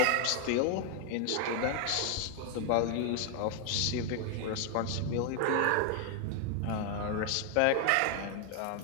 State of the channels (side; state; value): both; different; correlation 0.00